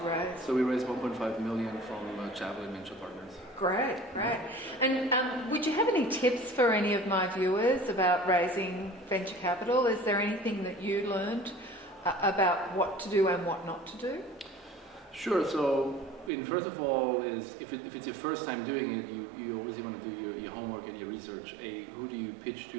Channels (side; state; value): left; drops out; at 16.3 s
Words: raise? So we raised 1.5 million from Javelin Venture Partners. Great, great. And would you have any tips for any of my viewers about raising venture capital? Is there anything that you learned about what to do and what not to do? Sure. So, first of all, is if it's your first time doing it, you always want to do your homework and your research. Who do you pitch